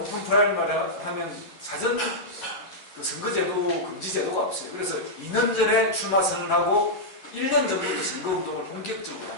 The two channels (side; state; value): right; late; 11 ms